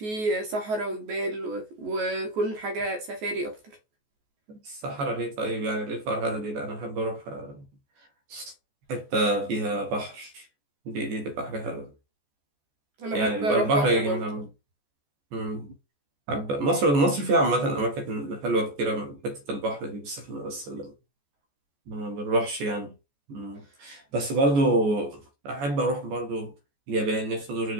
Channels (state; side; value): late; left; 14 ms